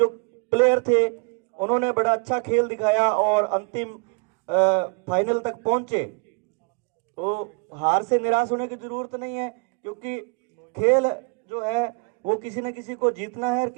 प्लेयर थे उन्होंने बड़ा अच्छा खेल दिखाया और अंतिम फाइनल तक पहुंचे। तो हार से निराश होने की जरूरत नहीं है, क्योंकि खेल जो है वो किसी न किसी को जीतना है और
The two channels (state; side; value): quieter; left; 33.2 dB